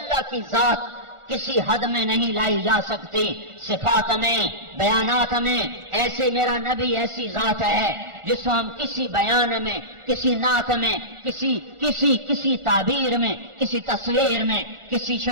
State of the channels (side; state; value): left; late; 1.4 ms